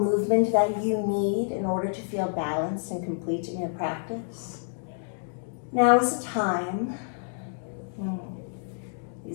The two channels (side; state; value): right; silent; digital silence